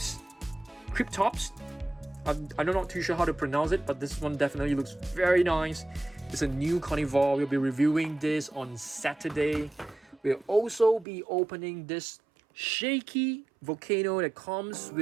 I'm not too sure how to pronounce it, but this one definitely looks very nice. It's a new carnivore. We'll be reviewing this on Saturday. We'll also be opening this shaky volcano that comes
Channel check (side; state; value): left; drops out; at 11.1 s